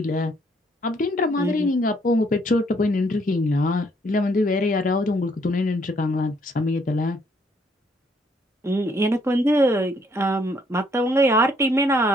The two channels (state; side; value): normal; both; correlation 0.68